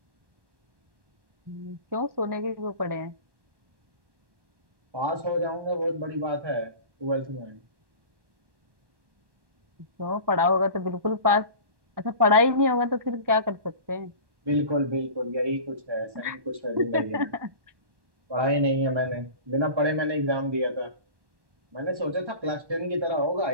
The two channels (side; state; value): left; late; 1.1 ms